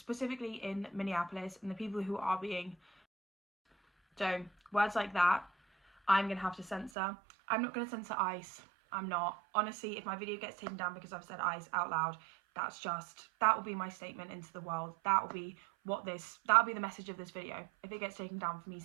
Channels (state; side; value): drops out; left; at 6.9 s